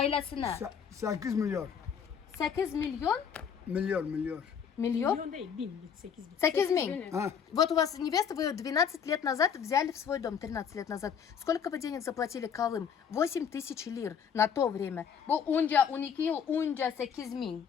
8 milyar. 8 milyon? Milyar. Миллион? Milyon değil, 8 bin. 8 миллион. Ha. Вот у вас невеста, вы ее 12 лет назад взяли в свой дом, 13 лет назад. Сколько вы денег заплатили Калым? 8 тысяч лир на то время. Bu önce 12 yıl önce 8 bin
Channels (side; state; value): right; quieter; 7.4 dB